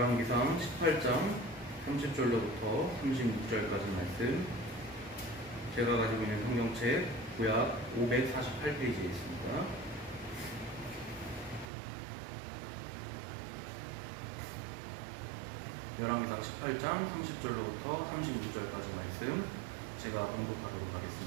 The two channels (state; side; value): drops out; left; at 11.7 s